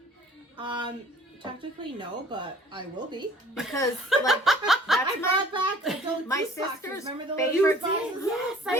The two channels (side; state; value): both; normal; correlation 0.52